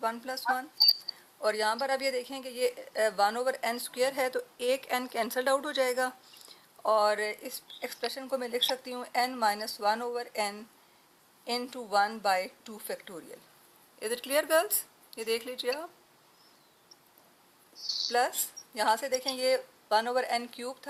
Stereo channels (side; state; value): both; identical; correlation 1.00